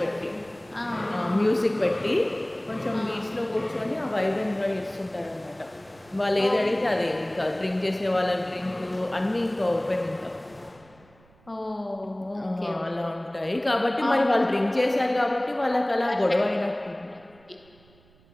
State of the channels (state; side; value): noise; right; rumble, 29 dB below the sound